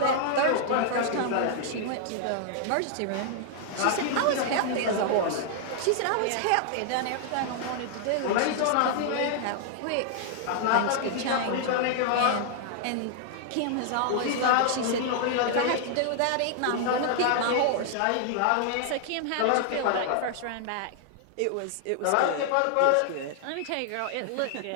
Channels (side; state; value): both; different; correlation -0.01